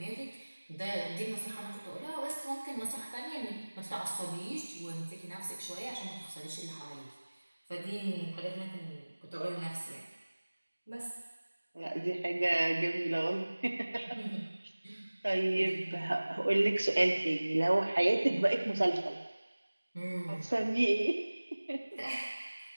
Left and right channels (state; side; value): inverted; both; correlation -1.00